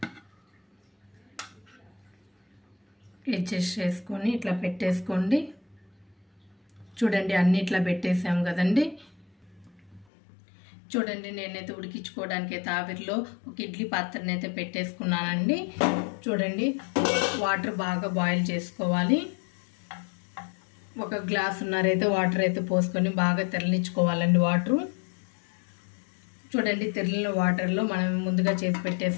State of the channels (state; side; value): drops out; right; at 10.1 s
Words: అడ్జస్ట్ చేసుకొని ఇట్లా పెట్టేసుకోండి. చూడండి అన్ని ఇట్లా పెట్టేసాం కదండి. చూడండి నేనైతే ఉడికించుకోవడానికి అయితే ఆవిరిలో ఒక ఇడ్లీ పాత్రని అయితే పెట్టేసుకున్నానండి. చూడండి వాటర్ బాగా బాయిల్ చేసుకోవాలి. 1 గ్లాసున్నర అయితే వాటర్ అయితే పోసుకొని బాగా తెరలించుకోవాలండి వాటరు. చూడండి తెరలిన వాటర్లో మనం ముందుగా చేసి